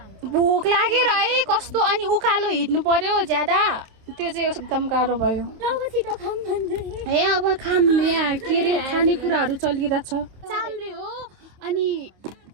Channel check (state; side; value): late; left; 27 ms